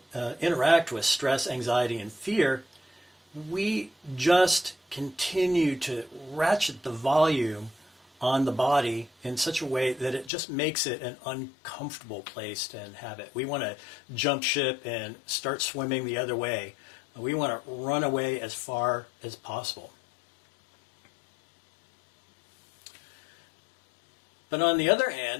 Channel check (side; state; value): right; drops out; at 10.3 s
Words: interact with stress, anxiety, and fear, we just continue to ratchet the volume on the body in such a way that it just makes it an uncomfortable place to inhabit. We want to jump ship and start swimming the other way. We want to run away as far as possible. But on the other